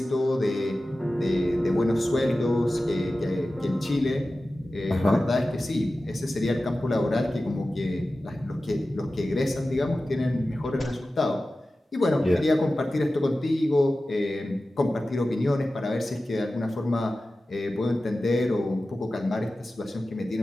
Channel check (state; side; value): normal; both; correlation 0.95